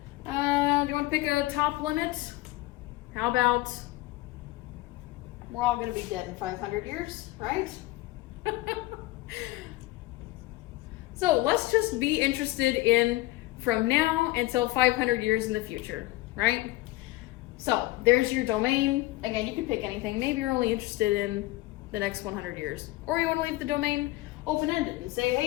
Do you want to pick a top limit? How about we're all going to be dead in 500 years, right? So let's just be interested in from now until 500 years in the future, right? So there's your domain. Again, you can pick anything. Maybe you're only interested in the next 100 years. Or you want to leave the domain open-ended and say,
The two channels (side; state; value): right; quieter; 18.3 dB